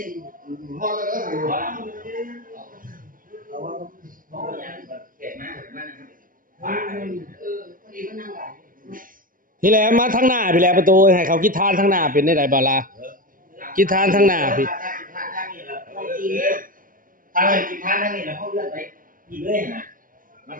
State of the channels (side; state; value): left; late; 0.40 ms